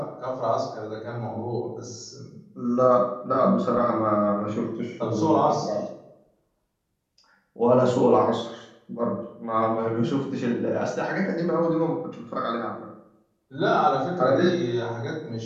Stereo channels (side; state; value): both; identical; correlation 1.00